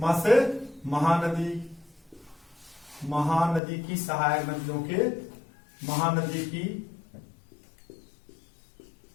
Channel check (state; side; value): drops out; right; at 3.6 s